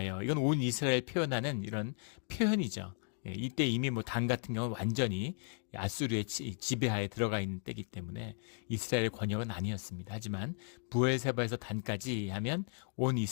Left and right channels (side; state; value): right; silent; 54 dB below the other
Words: 이건 온 이스라엘 표현하는 이런 표현이죠. 이때 이미 뭐 단 같은 경우는 완전히 아수르의 지배하에 들어가 있는 때이기 때문에 이스라엘의 권역은 아니었습니다. 하지만 부엘세바에서 단까지 하면 온